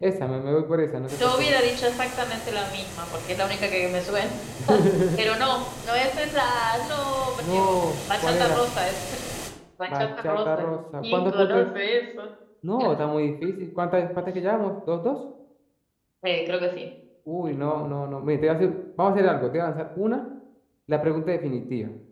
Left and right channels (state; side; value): identical; both; correlation 1.00